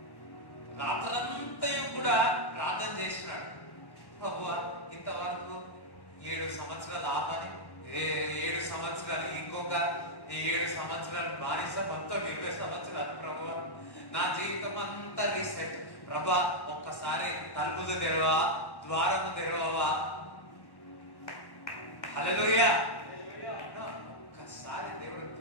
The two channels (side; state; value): right; late; 1.1 ms